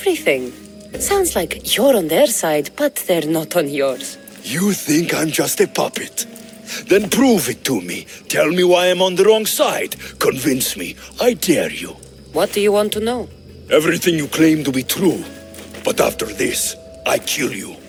Sounds like you're on their side, but they're not on yours. You think I'm just a puppet? Then prove it to me. Tell me why I'm on the wrong side. Convince me. I dare you. What do you want to know? Everything you claim to be true. But after this, I kill you.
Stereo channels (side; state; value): both; identical; correlation 1.00